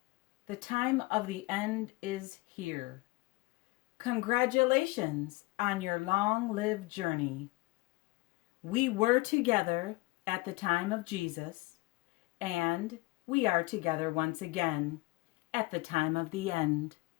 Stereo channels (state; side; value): quieter; right; 22.3 dB